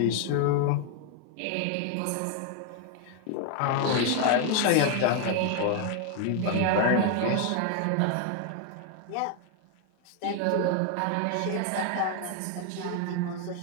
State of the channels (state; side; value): different; both; correlation 0.00